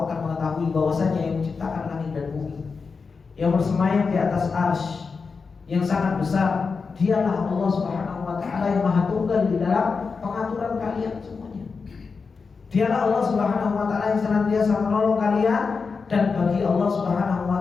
akan mengetahui bahwasanya yang menciptakan langit dan bumi, yang bersemayam di atas arsy yang sangat besar, dialah Allah Subhanahu Wa Taala yang maha tunggal di dalam pengaturan kalian semuanya. Dialah Allah Subhanahu Wa Taala yang senantiasa menolong kalian, dan bagi Allah Subhanahu Wa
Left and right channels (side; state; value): right; quieter; 4.9 dB